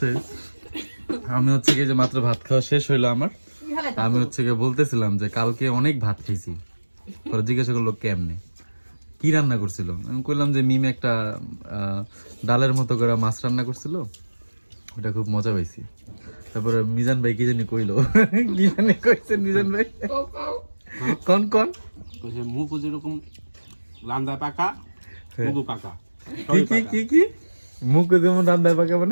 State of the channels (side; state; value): both; inverted; correlation -1.00